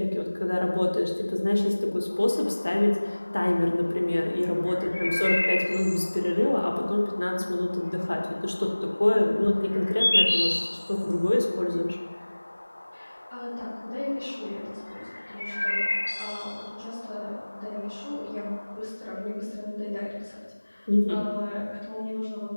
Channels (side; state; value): both; inverted; correlation -1.00